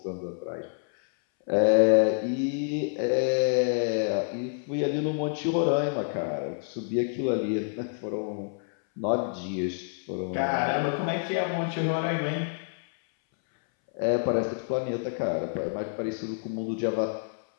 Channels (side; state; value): right; silent; 59 dB below the other